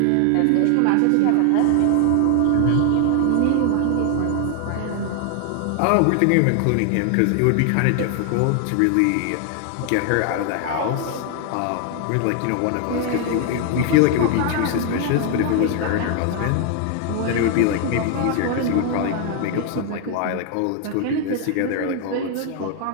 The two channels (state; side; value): different; both; correlation 0.00